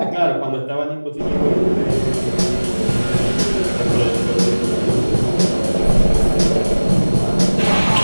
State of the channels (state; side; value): inverted; both; correlation -1.00